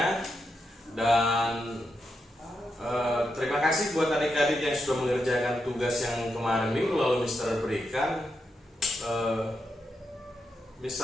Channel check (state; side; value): normal; both; correlation 0.85